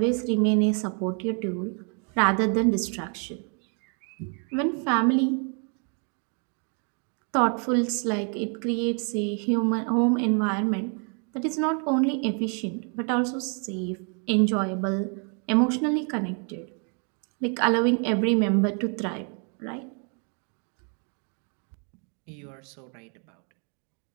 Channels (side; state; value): left; quieter; 39.5 dB